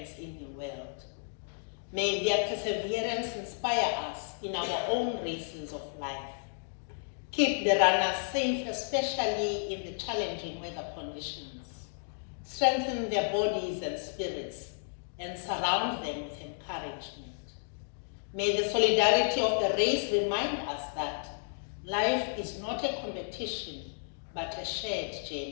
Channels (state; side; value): silent; right; digital silence